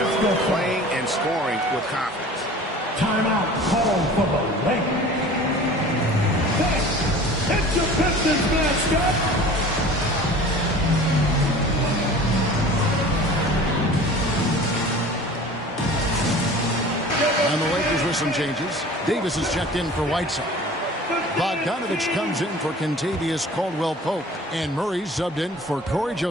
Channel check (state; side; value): normal; both; correlation 0.43